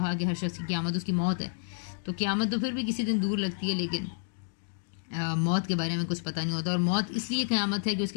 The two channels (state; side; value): silent; right; digital silence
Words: کہ ہر شخص کی قیامت اس کی موت ہے. تو قیامت تو پھر بھی کسی دن دور لگتی ہے، لیکن موت کے بارے میں کچھ پتہ نہیں ہوتا. اور موت اس لیے قیامت ہے کہ اس